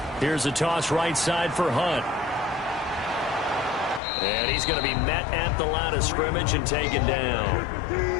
Here's a toss right side for Hunt. And he's going to be met at the line of scrimmage and taken down.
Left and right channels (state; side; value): drops out; right; at 4.0 s